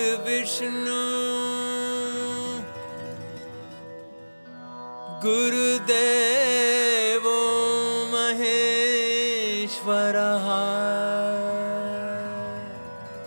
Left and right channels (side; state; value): both; inverted; correlation -1.00